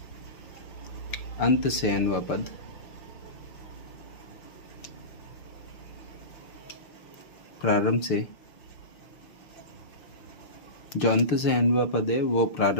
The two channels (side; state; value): right; late; 6.6 ms